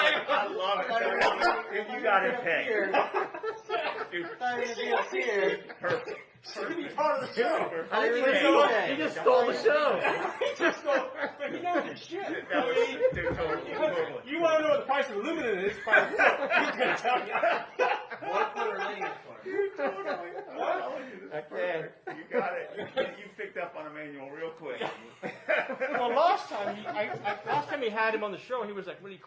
love it. If you got it pegged. Dude, perfect. It's going to be part of the show. I didn't Perfect. even know that. You just stole the show. But you know the shit. That was, dude, totally. You want to know what the price of aluminum is? He's going to tell you. Okay. You got it. You picked up on Emmanuel real quick. Well, last time he had him on the show, he was like really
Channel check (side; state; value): both; identical; correlation 1.00